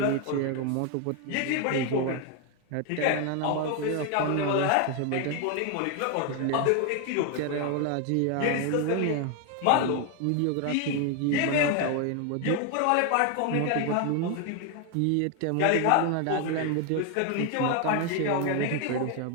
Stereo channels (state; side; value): different; both; correlation 0.01